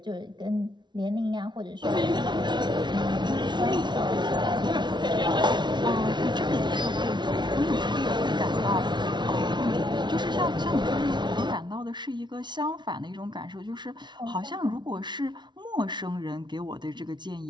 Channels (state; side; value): late; left; 0.21 ms